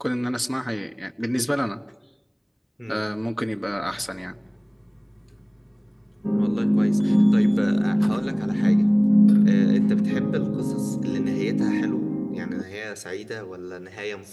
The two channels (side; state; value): both; identical; correlation 1.00